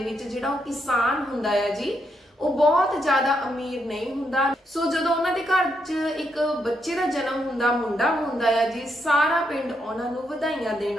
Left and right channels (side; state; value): both; normal; correlation 0.79